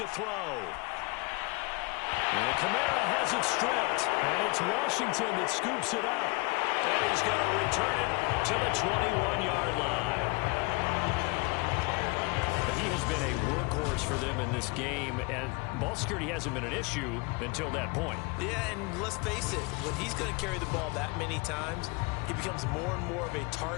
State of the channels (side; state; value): right; quieter; 27.5 dB